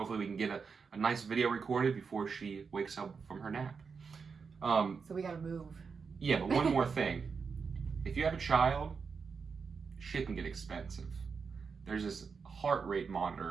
we can get a nice video recorded before she wakes up from her nap. So we gotta move. Yeah, but one more thing. If you have a child, shit can get expensive. There's this heart rate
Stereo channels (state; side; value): quieter; left; 5.5 dB